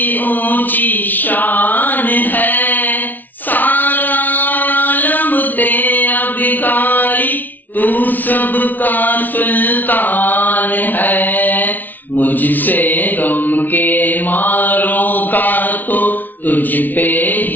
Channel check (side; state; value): right; late; 0.084 ms